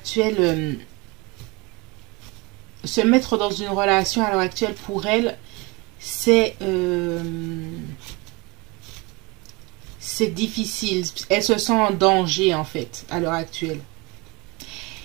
se mettre dans une relation à l'heure actuelle pour elle, c'est difficile. Elle se sent en danger en fait à l'heure actuelle.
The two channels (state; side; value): quieter; left; 26.1 dB